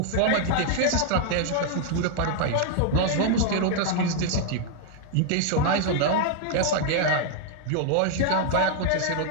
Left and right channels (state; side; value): different; both; correlation 0.00